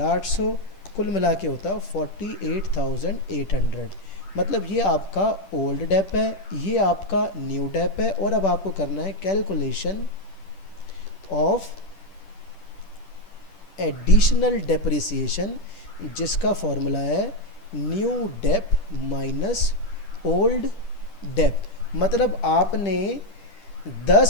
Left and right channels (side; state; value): right; late; 10 ms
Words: कुल मिला के होता 48,800। मतलब ये आपका ओल्ड डेप है, ये आपका न्यू डेप है, और अब आपको करना है कैलकुलेशन ऑफ एडिशनल डेप्रिसिएशन, जिसका फॉर्मूला है new dep minus old dep. मतलब आपने